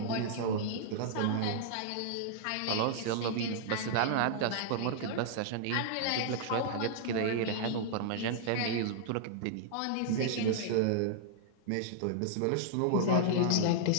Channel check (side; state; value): both; different; correlation -0.01